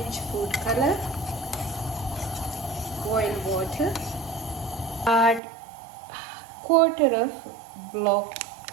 food color, boil water, add quarter of block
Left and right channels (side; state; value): left; drops out; at 5.4 s